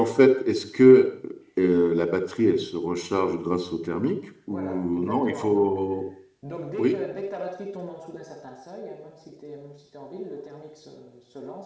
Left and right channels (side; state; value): both; identical; correlation 1.00